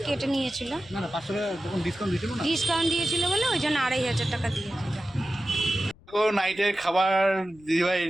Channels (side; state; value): left; noise; rumble, 26 dB below the sound